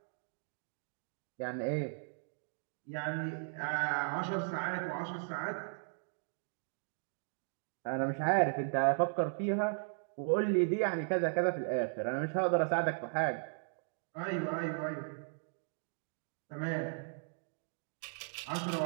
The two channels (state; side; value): silent; left; digital silence